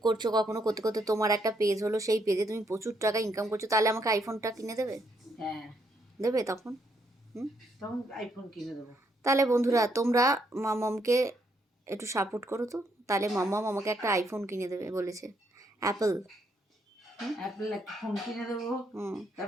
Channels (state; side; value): normal; both; correlation 0.74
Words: করছো, কখনো করতে করতে তোমার একটা পেজ হলো, সেই পেজে তুমি প্রচুর টাকা ইনকাম করছো, তাহলে আমাকে আইফোনটা কিনে দেবে? হ্যাঁ, দেবে তখন? তখন আইফোন কিনে দেবো। তাহলে বন্ধুরা তোমরা মামামকে একটু সাপোর্ট করো তো, তাহলে মামাম আমাকে একটা আইফোন কিনে দেবে বলেছে, অ্যাপল। অ্যাপেল একটা ফোন কিনে দেবো,